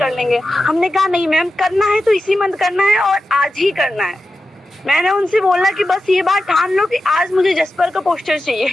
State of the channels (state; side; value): normal; both; correlation 0.91